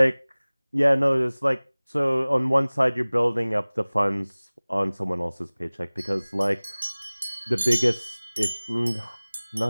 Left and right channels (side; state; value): both; inverted; correlation -1.00